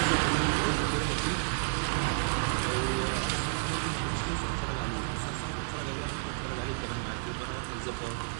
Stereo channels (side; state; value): left; silent; 57 dB below the other